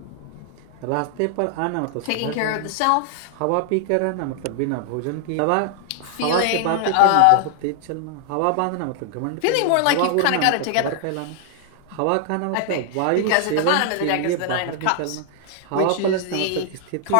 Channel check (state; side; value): different; both; correlation 0.00